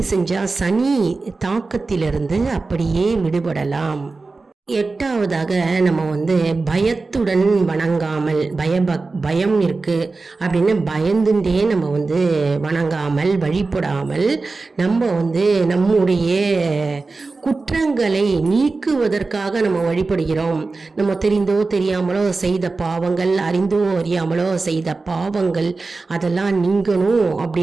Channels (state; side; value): quieter; left; 3.8 dB